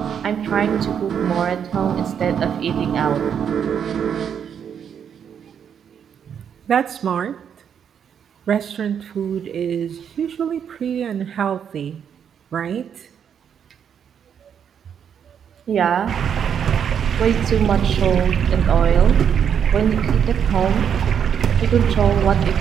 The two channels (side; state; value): left; quieter; 8.0 dB